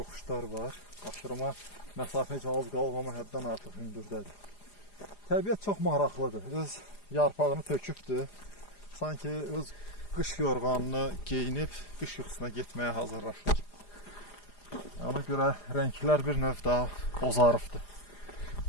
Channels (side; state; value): right; late; 4.9 ms